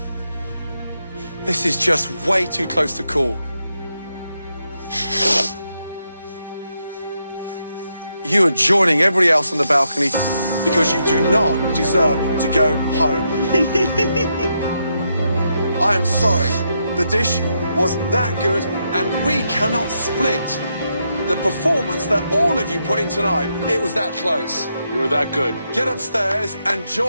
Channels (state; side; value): inverted; both; correlation -0.81